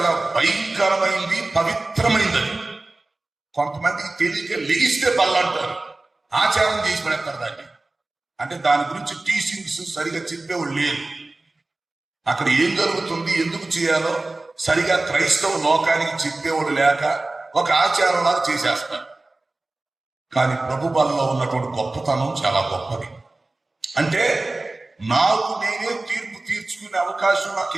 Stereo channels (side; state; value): left; quieter; 3.0 dB